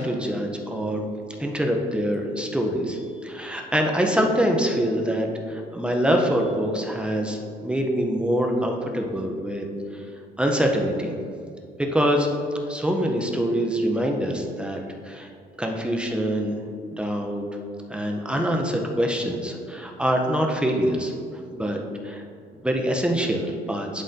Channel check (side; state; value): both; normal; correlation 0.73